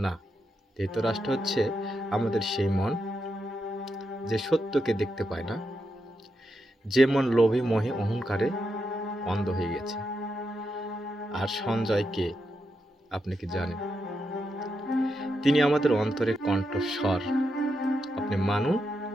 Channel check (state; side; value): normal; both; correlation 0.84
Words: না, ধৃতরাষ্ট্র হচ্ছে আমাদের সেই মন যে সত্যকে দেখতে পায় না, যে মন লোভী মোহে অহংকারে অন্ধ হয়ে গেছে। আর সঞ্জয় কে, আপনি কি জানেন? তিনি আমাদের অন্তরের কণ্ঠস্বর। আপনি মানুন